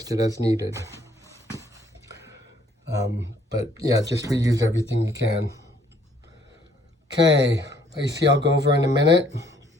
it as needed. But yeah, just reuse everything you can. Okay, AC I'll go over in a minute.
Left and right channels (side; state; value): both; normal; correlation 0.64